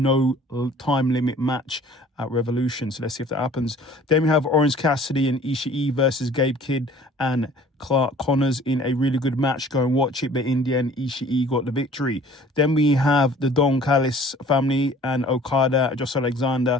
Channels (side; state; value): both; normal; correlation 0.50